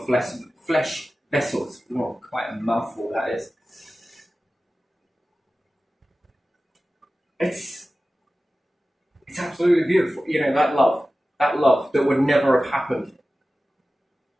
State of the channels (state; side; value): normal; both; correlation 0.95